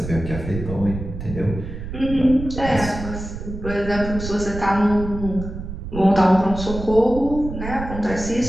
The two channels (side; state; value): right; noise; rumble, 8 dB below the sound